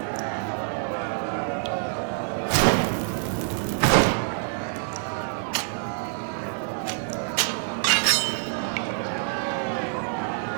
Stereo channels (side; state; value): left; silent; 61 dB below the other